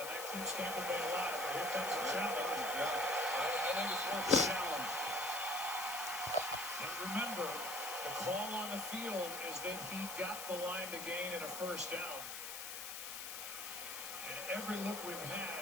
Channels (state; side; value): noise; left; hiss, 7 dB below the sound